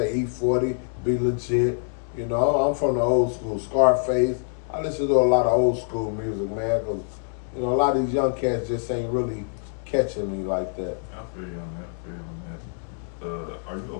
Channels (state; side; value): silent; right; digital silence